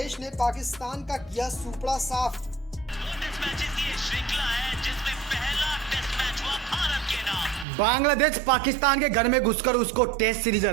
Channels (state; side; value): drops out; left; at 7.7 s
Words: ने पाकिस्तान का किया सुपड़ा साफ। टेस्ट मैचेस की ये श्रृंखला है जिसमें पहला टेस्ट मैच हुआ भारत के नाम। बांग्लादेश पाकिस्तान के घर में घुसकर उसको टेस्ट सीरीज